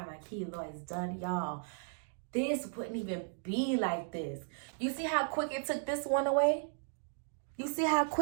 my keloids done, y'all, this wouldn't even be like this. You see how quick it took this one away? You see how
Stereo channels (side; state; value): left; silent; digital silence